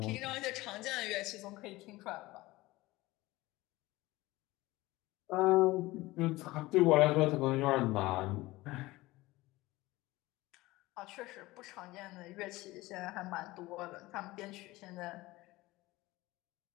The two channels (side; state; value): right; quieter; 19.5 dB